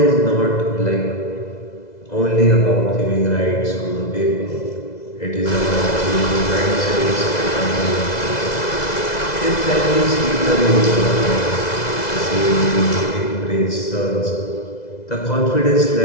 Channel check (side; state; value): right; late; 2.0 ms